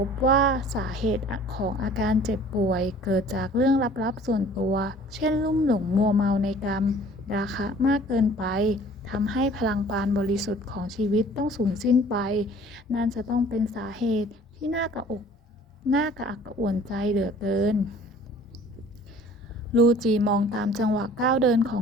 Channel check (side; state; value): both; normal; correlation 0.50